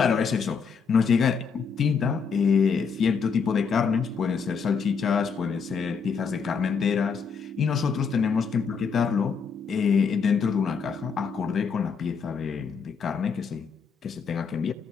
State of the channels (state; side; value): quieter; right; 5.8 dB